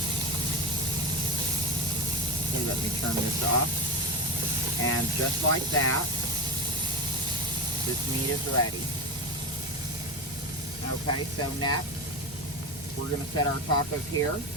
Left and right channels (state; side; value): normal; both; correlation 0.20